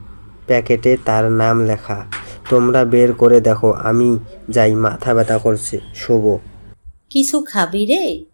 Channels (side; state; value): both; inverted; correlation -1.00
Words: প্যাকেটে তার নাম লেখা। তোমরা বের করে দেখো, আমি যাই, মাথা ব্যথা করছে, শুভ। কিছু খাবি রে?